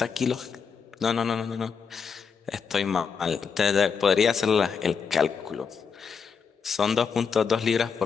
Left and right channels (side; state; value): right; quieter; 6.1 dB